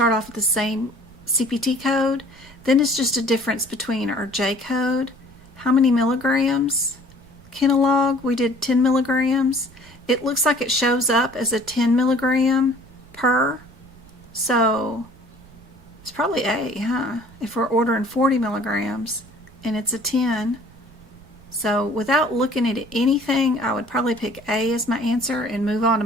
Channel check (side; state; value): right; noise; rumble, 24 dB below the sound